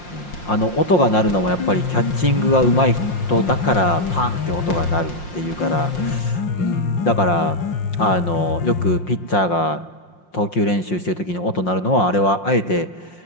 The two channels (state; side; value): late; right; 5.6 ms